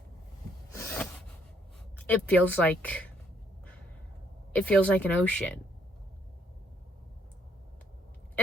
it feels like an ocean.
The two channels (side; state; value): both; normal; correlation 0.69